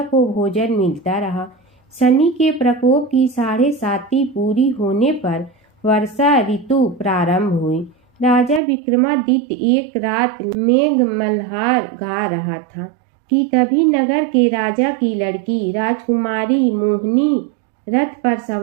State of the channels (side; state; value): left; drops out; at 8.6 s